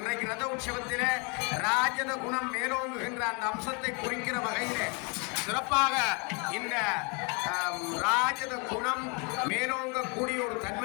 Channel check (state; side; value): quieter; right; 33.2 dB